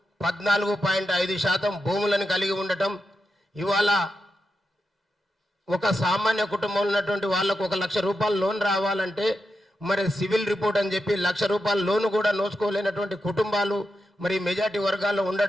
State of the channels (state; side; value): normal; both; correlation 0.88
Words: 14.5% భూములను కలిగి ఉండటం, ఇవాళ ఒక సామాన్య కుటుంబంలో ఉన్నటువంటి వాళ్ళకు 1 లక్ష రూపాయల లోన్ రావాలంటే మరి సివిల్ రిపోర్ట్ అని చెప్పి 1 లక్ష రూపాయల లోన్ కూడా నోచుకోలేనటువంటి కుటుంబాలు మరి మెజార్టీ వర్గాల్లో